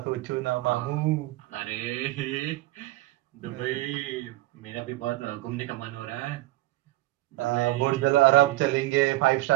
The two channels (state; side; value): quieter; left; 17.7 dB